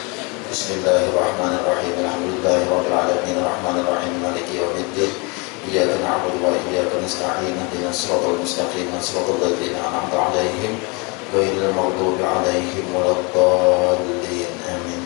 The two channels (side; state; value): right; quieter; 30.1 dB